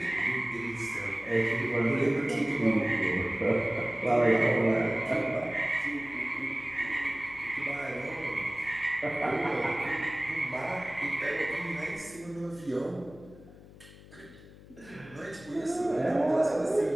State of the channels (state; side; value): noise; left; hum, 20 dB below the sound